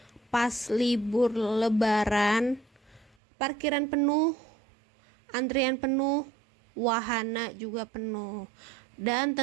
pas libur lebaran, parkiran penuh, antrian penuh, wahana juga penuh. Dan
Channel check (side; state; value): left; drops out; at 3.2 s